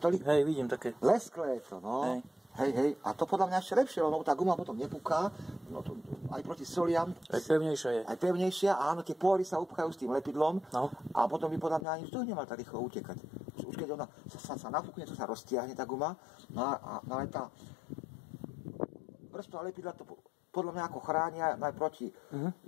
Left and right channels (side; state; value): right; drops out; at 11.9 s